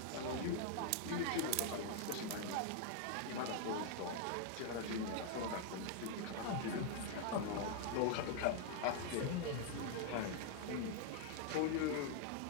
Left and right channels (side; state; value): both; different; correlation 0.00